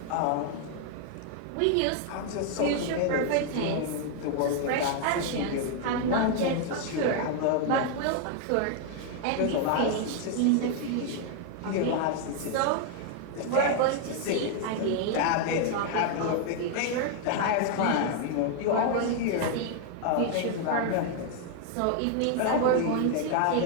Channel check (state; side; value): different; both; correlation 0.00